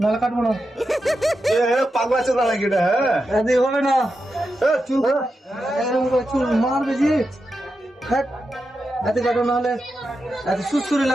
কাটবো না এ হে পাগলা চোদা নাকি এটা হ্যাঁ এদি হবে না এ চুপ এরকম করে চুল মারবে জি হ্যাঁ এতে কাটো নাহলে এত সুসুরি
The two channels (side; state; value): both; normal; correlation 0.88